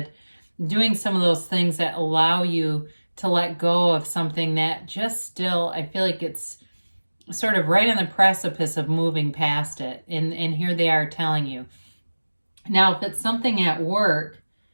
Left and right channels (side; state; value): both; inverted; correlation -1.00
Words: Doing some of those things that allow you to let go of something that just still, I feel like it's sort of right on the precipice of moving past it. And here they are telling you. Now, if it's something at work